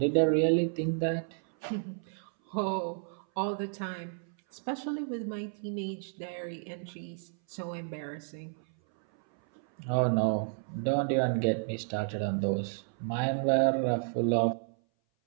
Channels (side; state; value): left; silent; 57 dB below the other